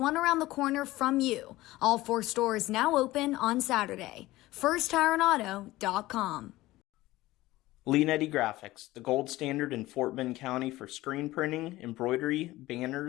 around the corner from you. All 4 stores now open on Saturday. FirstTireandAuto.com. Leanetti Graphics, the gold standard in Fort Bend County for screen printing, embroidery,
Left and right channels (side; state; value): right; quieter; 17.7 dB